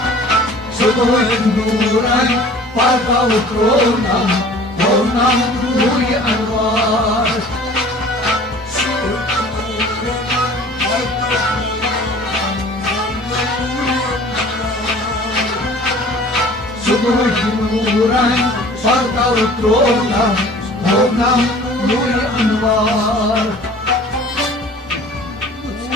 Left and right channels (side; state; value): both; normal; correlation 0.47